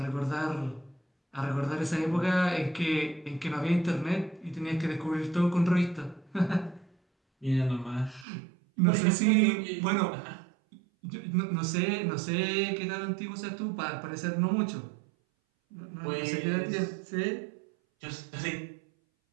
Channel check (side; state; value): left; drops out; at 8.2 s